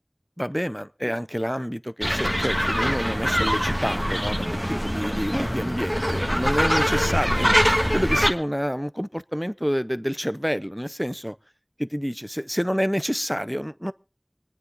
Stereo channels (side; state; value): both; identical; correlation 1.00